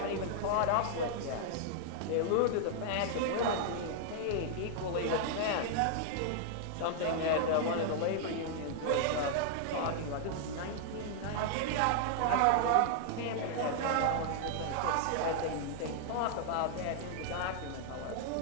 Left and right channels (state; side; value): different; both; correlation -0.01